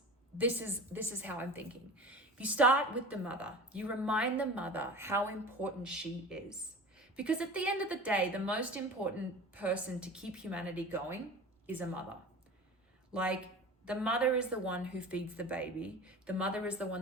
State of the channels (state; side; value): normal; both; correlation 0.35